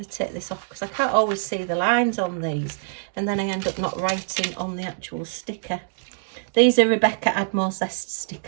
to take this off because I can't always see the lines on these, and then I end up not writing on the actual sticker. These are Rebecca Admore Zest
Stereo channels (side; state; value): left; silent; digital silence